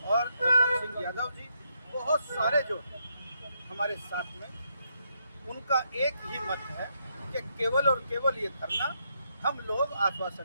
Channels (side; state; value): both; inverted; correlation -0.78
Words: और रतन सिंह यादव जी, बहुत सारे जो हमारे साथ में, उनका एक ही मत है कि केवल और केवल ये धरना हम लोग